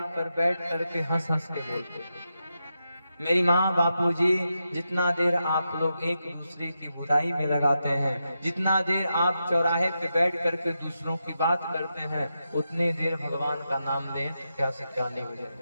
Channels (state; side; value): inverted; both; correlation -0.87